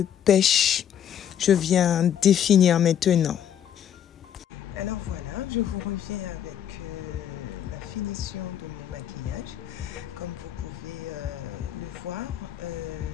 pêche. Je viens définir maintenant. Alors voilà, je vous reviens avec la finition de mon maquillage. Comme vous pouvez le voir,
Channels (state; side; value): quieter; right; 9.6 dB